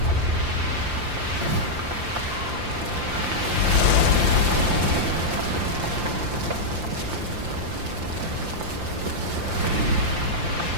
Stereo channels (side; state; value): left; late; 5.8 ms